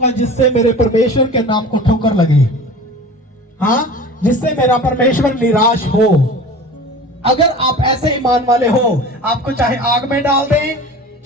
जिससे मेरे परमेश्वर के नाम को ठोकर लगे, हाँ, जिससे मेरा परमेश्वर निराश हो। अगर आप ऐसे ईमान वाले हो, आपको चाहे आग में डाल दें,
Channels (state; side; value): normal; both; correlation 0.38